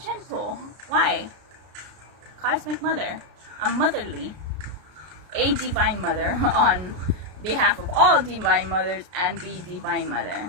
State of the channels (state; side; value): late; left; 33 ms